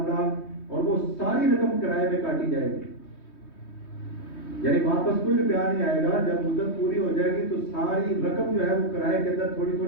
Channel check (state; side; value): late; right; 3.2 ms